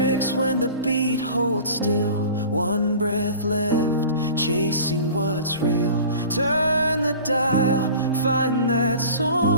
when the beat holds still. One breath left, chasing what's real. Turn the dial, find that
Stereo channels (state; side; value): inverted; both; correlation -0.40